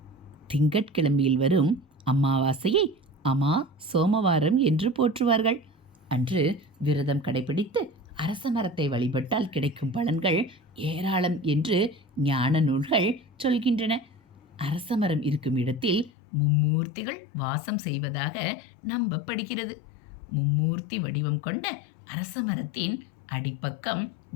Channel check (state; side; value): drops out; right; at 16.1 s